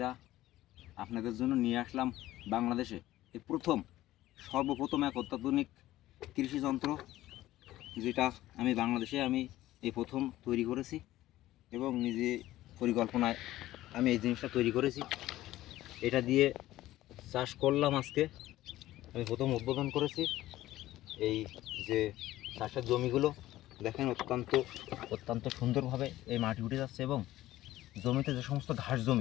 আপনাদের জন্য নিয়ে আসলাম বাংলাদেশে এই সর্বপ্রথম এক অত্যাধুনিক কৃষি যন্ত্র, যেটা বাংলাদেশে এই প্রথম তৈরি করেছি এবং নিজে পরিকল্পনায় আমি এই জিনিসটা তৈরি করেছি। এটা দিয়ে চাষ করলাম। আজকে আমি প্রথম উদ্বোধন করেছি। এই যে চাষের জমিগুলো দেখেন, অত্যন্ত সুন্দরভাবে এই মাটি উঠে যাচ্ছে এবং জমিতে যে সমস্ত ঘাস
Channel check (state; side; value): quieter; right; 15.4 dB